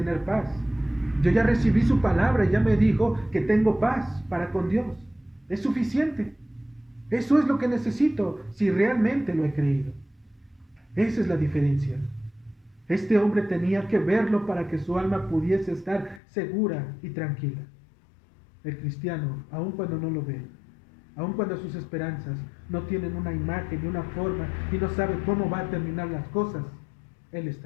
paz. Yo ya recibí su palabra y ya me dijo que tengo paz para con Dios. Es suficiente. Eso es lo que necesito si realmente lo he creído. Esa es la diferencia. Este hombre tenía que verlo para que su alma pudiese estar segura y tranquila. El cristiano, aun cuando no lo ve, aun cuando sus esperanzas no tienen una imagen y una forma y no sabe cómo va a terminar las cosas, él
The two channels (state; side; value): drops out; right; at 16.2 s